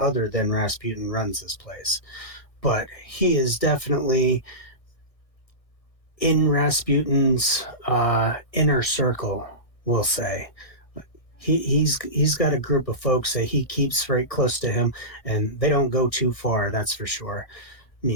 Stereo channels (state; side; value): late; right; 1.6 ms